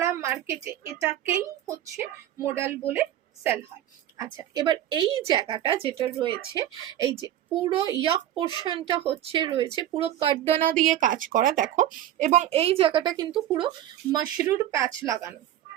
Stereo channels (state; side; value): quieter; left; 12.1 dB